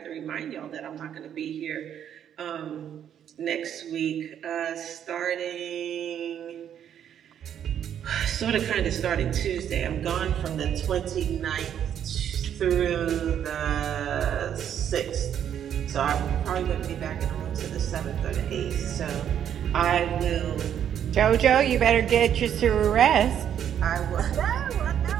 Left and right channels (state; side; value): quieter; left; 9.4 dB